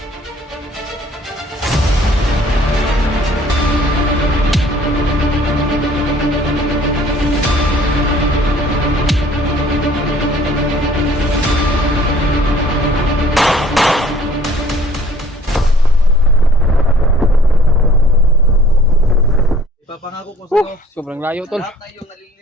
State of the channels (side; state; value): both; normal; correlation 0.54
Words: Ipapangako ko sa'yo. Sobrang layo tol.